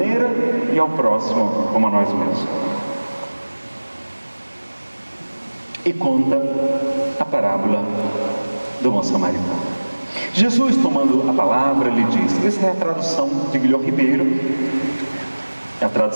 e ao próximo como a nós mesmos. E conta a parábola do bom samaritano. Jesus, tomando a palavra, lhe disse, essa é a tradução de Guilherme Ribeiro, é a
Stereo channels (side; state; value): both; inverted; correlation -1.00